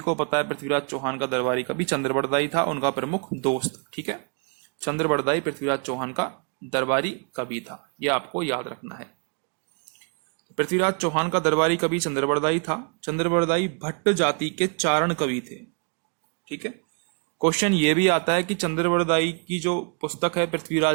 पता है पृथ्वीराज चौहान का दरबारी कवि चंद्रबरदाई था, उनका प्रमुख दोस्त। ठीक है, चंद्रबरदाई पृथ्वीराज चौहान का दरबारी कवि था, यह आपको याद रखना है। पृथ्वीराज चौहान का दरबारी कवि चंद्रबरदाई था। चंद्रबरदाई भट्ट जाति के चारण कवि थे। ठीक है, क्वेश्चन ये भी आता है कि चंद्रबरदाई की जो पुस्तक है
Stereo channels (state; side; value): quieter; left; 37.7 dB